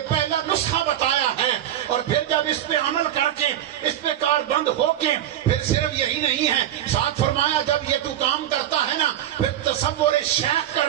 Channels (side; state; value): left; quieter; 11.7 dB